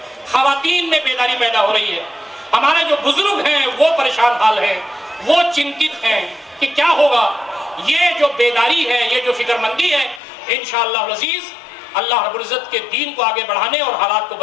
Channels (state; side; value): drops out; right; at 10.2 s